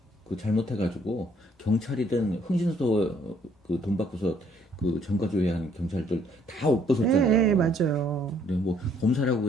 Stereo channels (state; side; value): normal; both; correlation 0.65